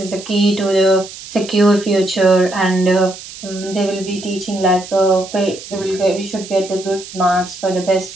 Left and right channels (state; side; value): noise; right; hiss, 14 dB below the sound